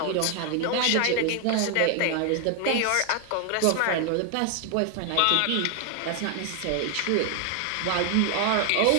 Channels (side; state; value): both; different; correlation 0.00